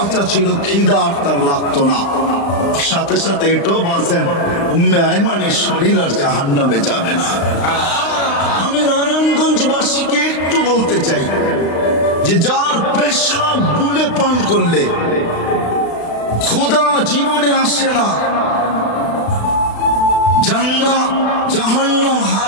ছিল খিদা আর তার লাগতো না। সাথে সাথে এটাও বলছেন, উম্মে আয়মানের শরীর আর জাহান্নামে যাবে না। আমি নারায়ণগঞ্জবাসীকে একটু বলতে চাই, যে যার পেশাব বুলে পান করলে ক্ষুধা জীবনে আসে না, জান্নাত জাহান্নাম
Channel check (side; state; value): right; late; 35 ms